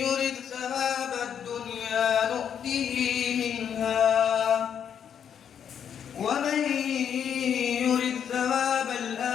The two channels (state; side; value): quieter; right; 8.3 dB